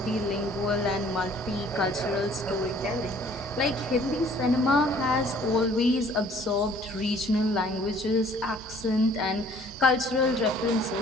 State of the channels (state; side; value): normal; both; correlation 0.56